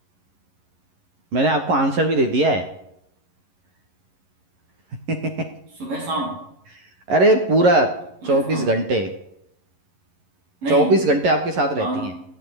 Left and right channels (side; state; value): left; late; 11 ms